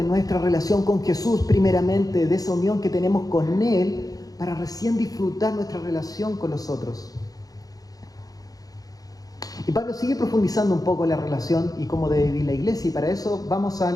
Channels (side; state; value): right; late; 0.18 ms